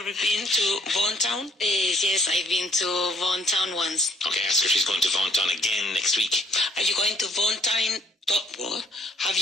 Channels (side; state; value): both; normal; correlation 0.64